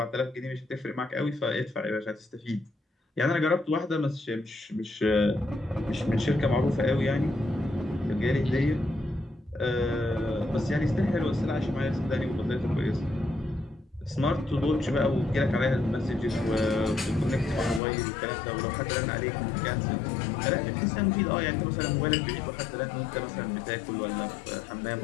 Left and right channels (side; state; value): right; drops out; at 17.8 s